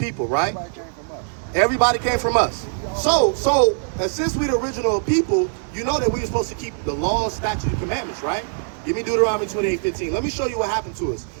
right? Everybody came from us. So since we're the original people, you know that we were supposed to keep the laws, statutes, and commandments, right? Give me Deuteronomy 28:15. Let me show you what happened to us.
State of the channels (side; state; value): left; silent; digital silence